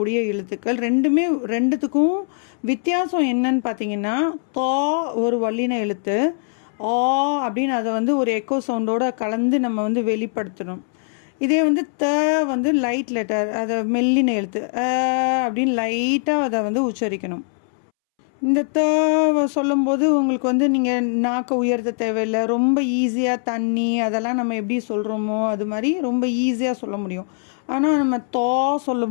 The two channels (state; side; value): silent; right; 65 dB below the other